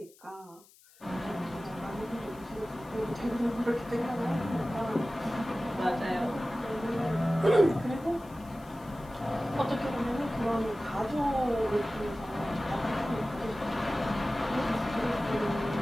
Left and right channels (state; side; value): noise; left; hiss, 26 dB below the sound